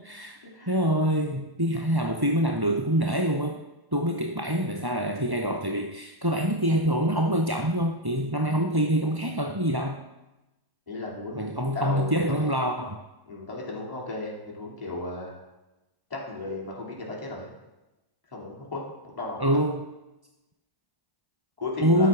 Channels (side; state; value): left; late; 1.1 ms